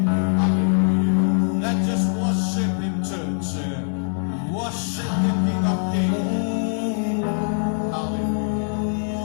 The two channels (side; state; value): right; silent; digital silence